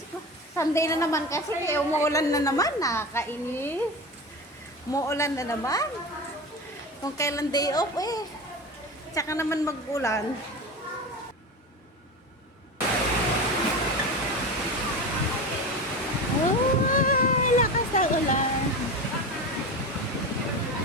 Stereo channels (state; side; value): normal; both; correlation 0.26